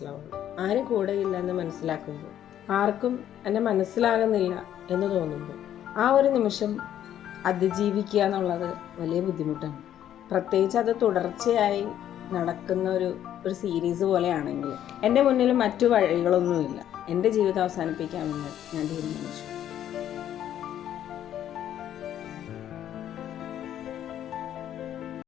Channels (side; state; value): right; quieter; 10.9 dB